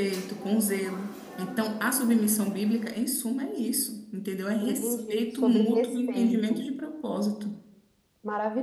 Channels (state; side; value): identical; both; correlation 1.00